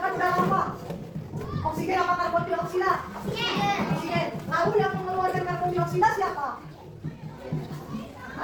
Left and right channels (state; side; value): identical; both; correlation 1.00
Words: udara apa? Oksigen apa karbon dioksida? Oksigen. Lalu yang mengeluarkan karbon dioksida siapa?